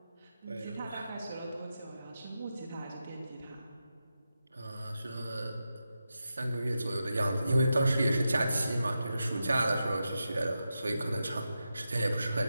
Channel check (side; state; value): both; inverted; correlation -0.89